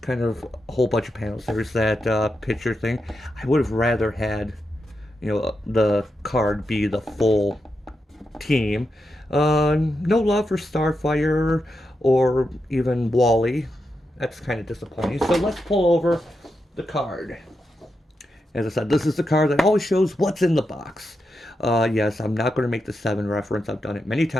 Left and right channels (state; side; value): normal; both; correlation 0.86